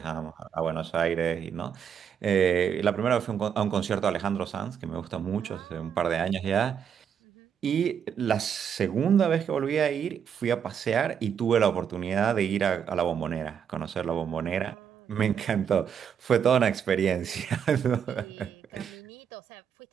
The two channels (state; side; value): quieter; left; 7.9 dB